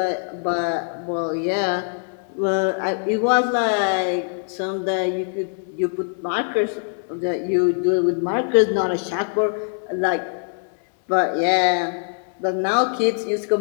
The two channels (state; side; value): silent; right; 63 dB below the other